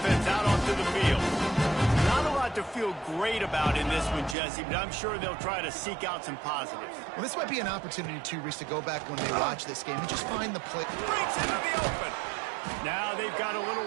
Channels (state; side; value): drops out; left; at 4.4 s